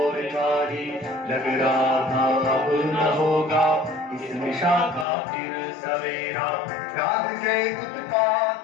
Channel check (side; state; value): right; drops out; at 5.1 s